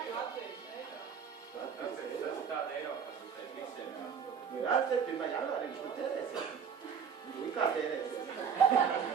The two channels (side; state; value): left; quieter; 7.0 dB